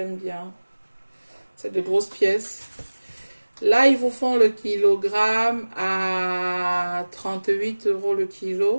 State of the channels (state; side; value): inverted; both; correlation -1.00